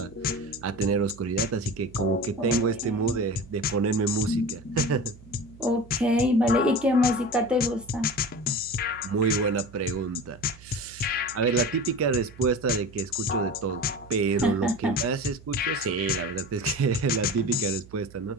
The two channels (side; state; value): right; noise; hum, 21 dB below the sound